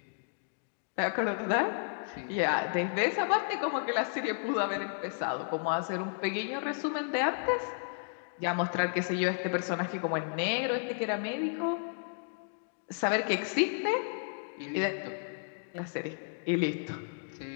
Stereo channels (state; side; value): silent; right; digital silence